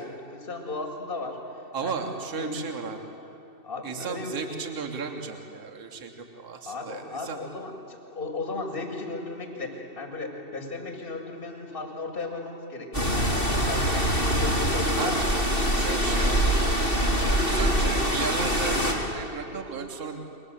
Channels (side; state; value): right; late; 2.7 ms